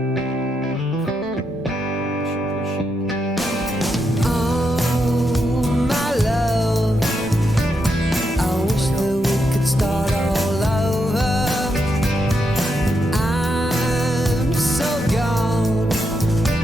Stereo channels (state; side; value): normal; both; correlation 0.82